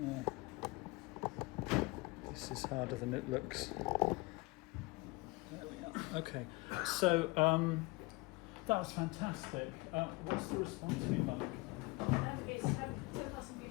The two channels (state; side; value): quieter; right; 23.7 dB